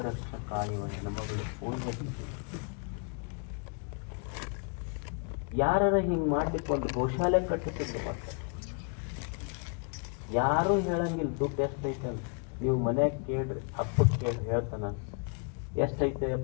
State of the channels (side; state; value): right; quieter; 39.7 dB